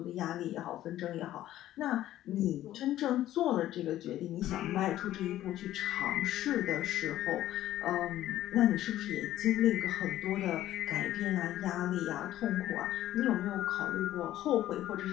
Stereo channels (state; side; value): quieter; right; 13.5 dB